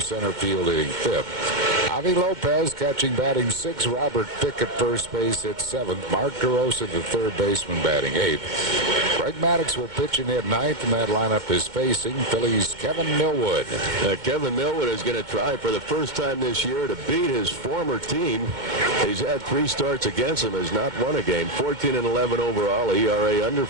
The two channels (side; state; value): left; late; 2.2 ms